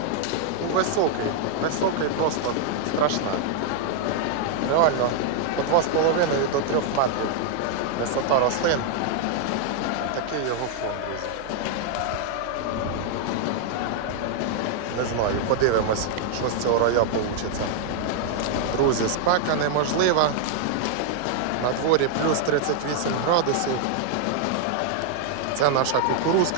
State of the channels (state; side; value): different; both; correlation 0.00